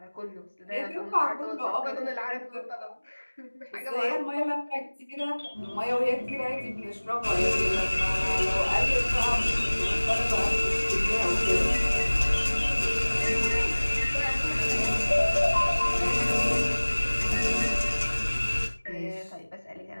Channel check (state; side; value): inverted; both; correlation -1.00